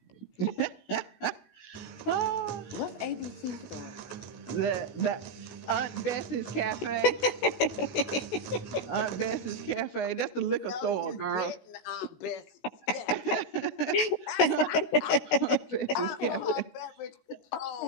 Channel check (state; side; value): late; right; 16 ms